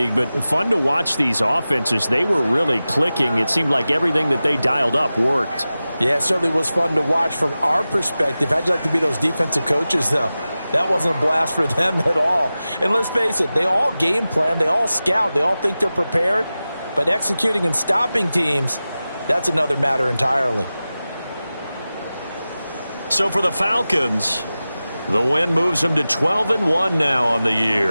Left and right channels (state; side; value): inverted; both; correlation -0.95